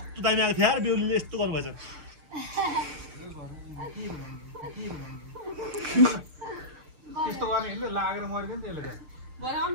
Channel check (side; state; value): left; late; 6.6 ms